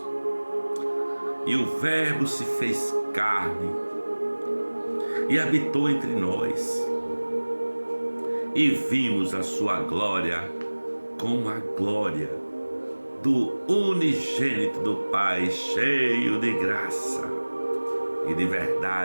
E o Verbo se fez carne e habitou entre nós, e vimos a sua glória como a glória do unigênito do Pai, cheio de graça e de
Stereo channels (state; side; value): inverted; both; correlation -1.00